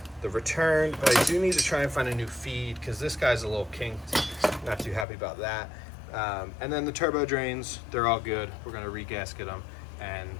return, but I do need to try and find a new feed because this guy's a little kinked. Not too happy about that. And then the turbo drains, they're all good. We're gonna re-gasket them and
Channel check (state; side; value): drops out; right; at 5.1 s